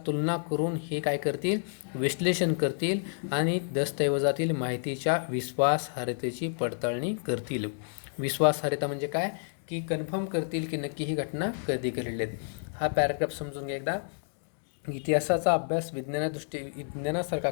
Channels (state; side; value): silent; right; digital silence